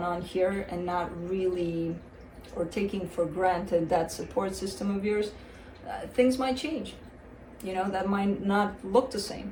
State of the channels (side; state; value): both; identical; correlation 1.00